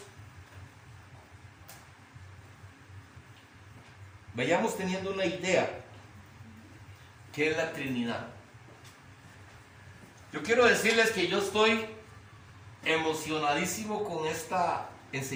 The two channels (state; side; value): identical; both; correlation 1.00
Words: vayamos teniendo una idea qué es la Trinidad. Yo quiero decirles que yo estoy emocionadísimo con esta